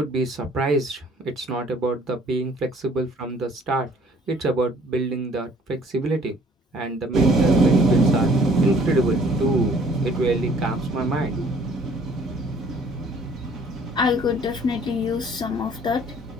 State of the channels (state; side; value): normal; both; correlation 0.57